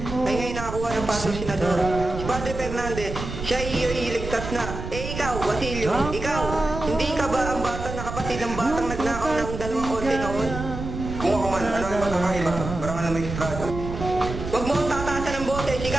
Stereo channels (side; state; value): right; noise; rumble, 7 dB below the sound